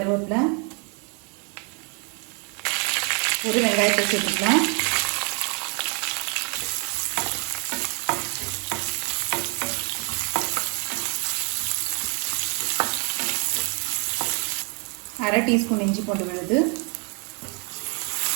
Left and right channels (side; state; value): left; quieter; 35.3 dB